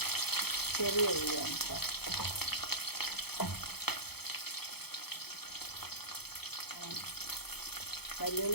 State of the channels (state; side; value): late; right; 0.96 ms